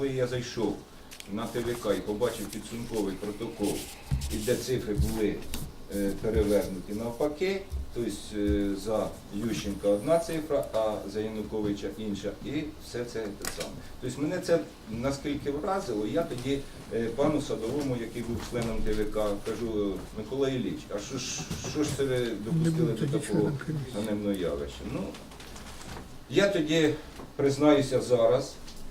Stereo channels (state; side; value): identical; both; correlation 1.00